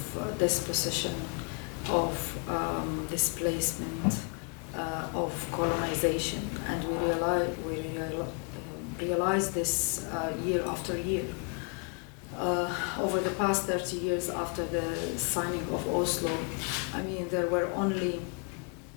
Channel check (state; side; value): quieter; right; 39.1 dB